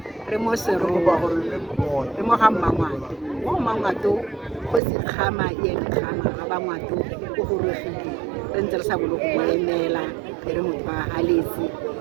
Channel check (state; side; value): drops out; left; at 4.8 s